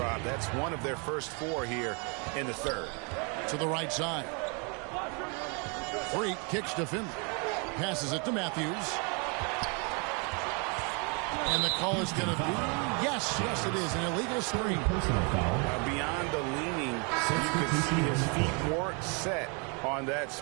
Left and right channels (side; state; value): left; quieter; 34.1 dB